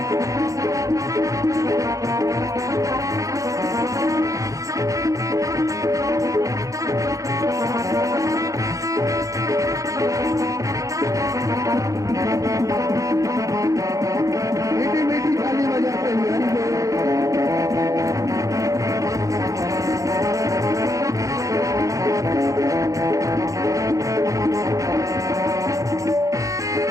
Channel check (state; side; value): late; left; 0.16 ms